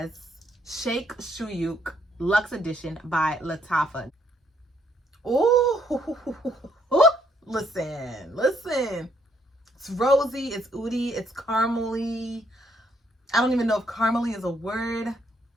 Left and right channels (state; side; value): normal; both; correlation 0.71